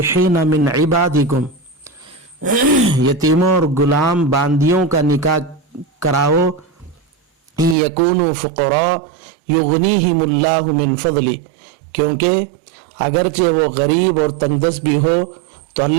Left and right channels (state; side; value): drops out; left; at 7.8 s